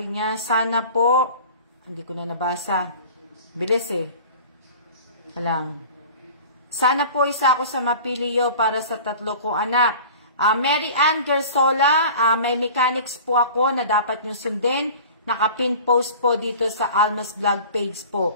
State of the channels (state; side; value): inverted; both; correlation -0.41